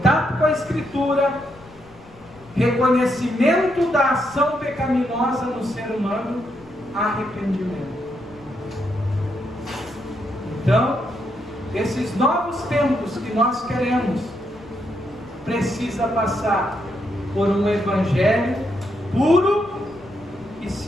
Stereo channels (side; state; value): left; noise; rumble, 25 dB below the sound